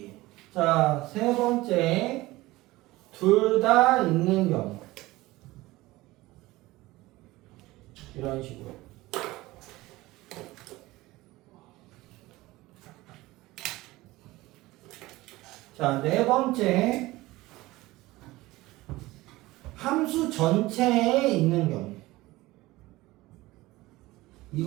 자, 세 번째 둘 다 있는 경우. 이런 식으로. 자, 네 번째 함수 전체에 있는 경우.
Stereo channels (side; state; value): left; quieter; 19.1 dB